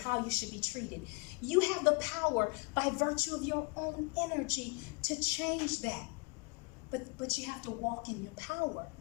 you should be treated, you have the power by virtue of your own energy to change that. But you have to walk in your power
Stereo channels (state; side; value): quieter; right; 32.2 dB